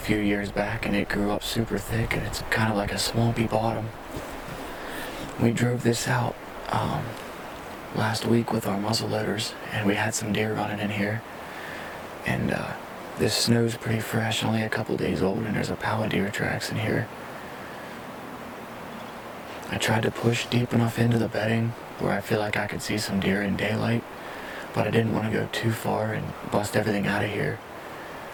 years back, and it grew up super thick, and it's kind of like a swampy bottom. We drove this out last week with our muzzle loaders, and we had some deer running in here. And this snow's pretty fresh, only a couple days old, and there's a pile of deer tracks in here. I tried to push deep enough into the bedding where I feel like I could see some deer in daylight, but I didn't want to go too far and bust everything out of here.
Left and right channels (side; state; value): both; identical; correlation 1.00